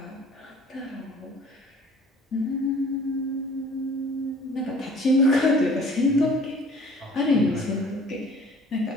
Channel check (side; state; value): both; normal; correlation 0.50